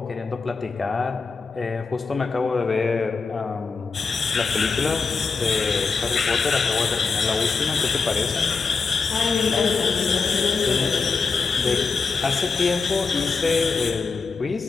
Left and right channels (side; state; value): right; quieter; 4.8 dB